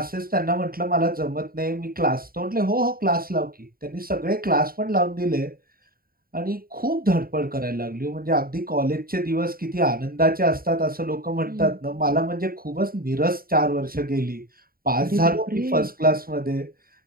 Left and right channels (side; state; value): left; late; 0.43 ms